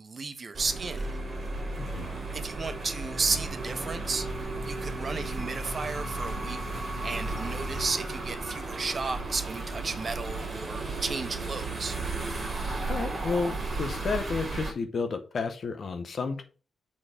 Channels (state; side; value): normal; both; correlation 0.84